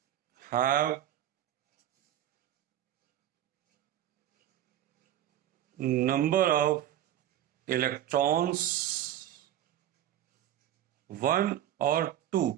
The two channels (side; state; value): left; quieter; 11.9 dB